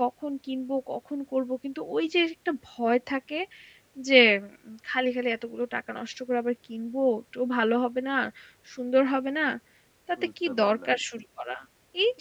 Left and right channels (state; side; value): identical; both; correlation 1.00